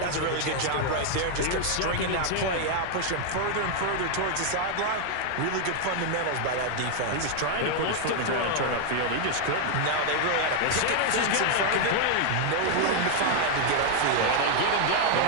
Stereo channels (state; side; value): different; both; correlation 0.00